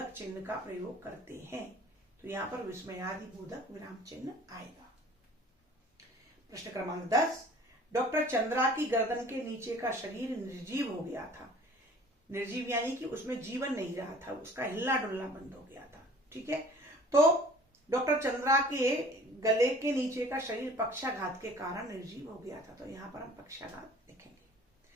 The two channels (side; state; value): both; normal; correlation 0.49